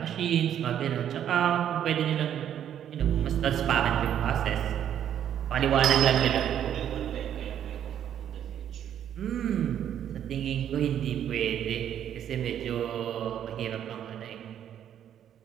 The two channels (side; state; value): left; quieter; 9.9 dB